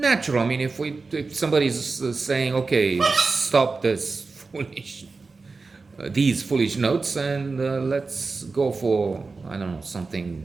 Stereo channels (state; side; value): quieter; left; 4.1 dB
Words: I mean, if somebody's saying, okay, stop this these foolish notes and let's go for, I don't know,